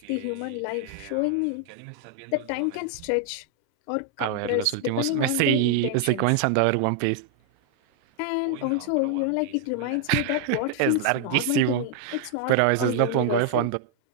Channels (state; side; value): different; both; correlation 0.00